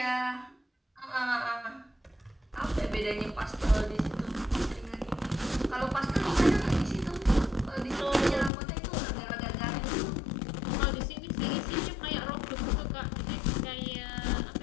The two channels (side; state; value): right; drops out; at 8.5 s